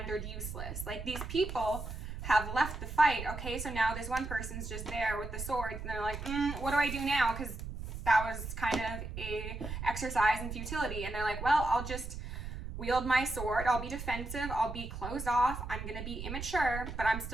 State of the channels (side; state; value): right; noise; rumble, 7 dB below the sound